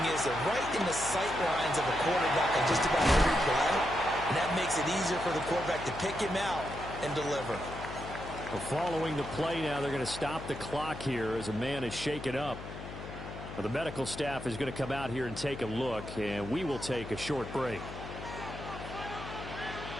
is they're right in the sight lines of a quarterback on just about every play, and that makes it easier for the quarterback to pick him out and deliver. Well, following the play now, they're going to stop the clock here as a man is shaken up. Well, the medical staff is going to come out here and take a look, and we will take a short break.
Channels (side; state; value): left; noise; hum, 10 dB below the sound